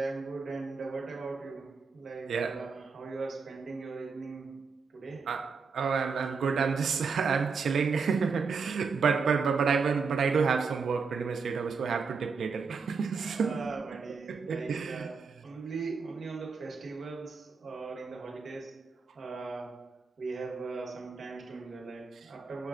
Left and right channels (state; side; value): quieter; left; 5.1 dB